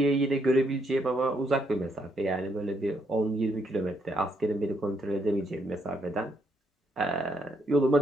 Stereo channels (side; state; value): both; normal; correlation 0.75